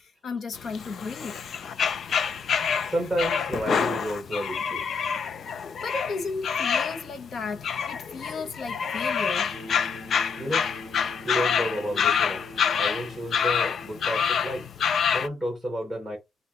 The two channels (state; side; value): quieter; right; 5.1 dB